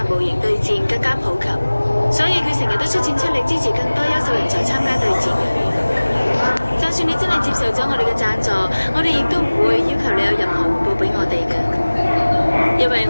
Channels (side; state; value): both; inverted; correlation -1.00